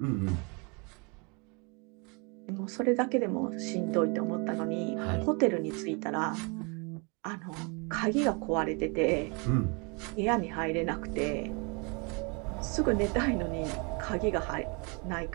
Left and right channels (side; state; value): left; quieter; 32.4 dB